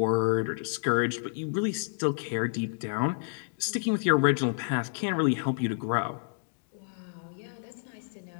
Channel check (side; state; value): right; silent; digital silence